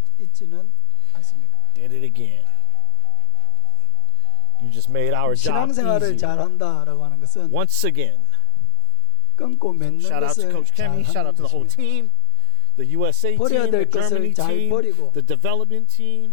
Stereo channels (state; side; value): different; both; correlation 0.00